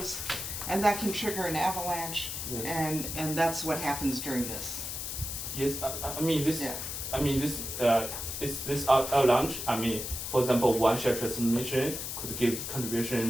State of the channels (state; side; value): noise; left; hiss, 5 dB below the sound